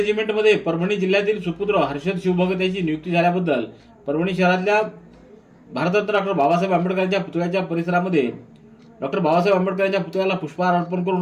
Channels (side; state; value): both; identical; correlation 1.00